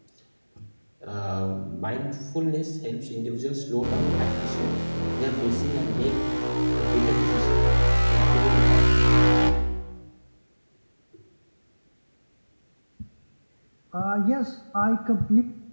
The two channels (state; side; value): inverted; both; correlation -1.00